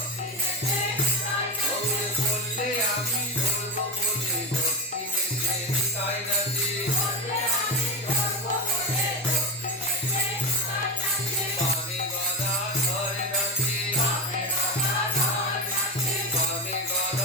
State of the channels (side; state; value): both; normal; correlation 0.19